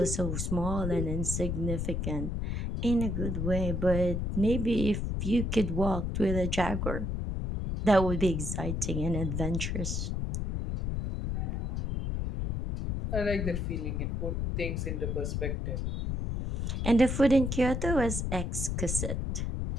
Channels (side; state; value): left; noise; rumble, 1 dB below the sound